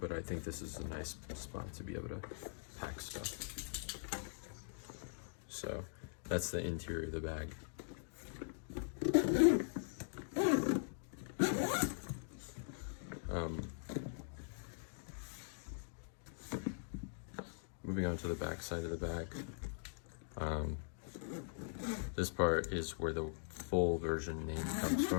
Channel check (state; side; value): silent; right; digital silence